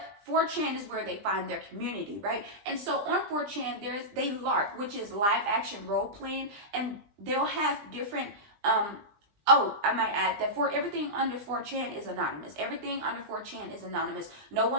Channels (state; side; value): late; left; 20 ms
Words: 4chan is where they find their community, right? And so on 4chan, they LARP, which is live action role playing, and they'll have different oh, I might add that for everything under 4chan is anonymous. Everything under 4chan is anonymous. No